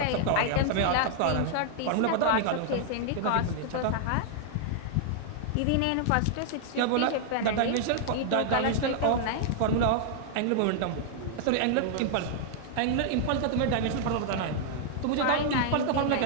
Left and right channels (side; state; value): both; different; correlation -0.01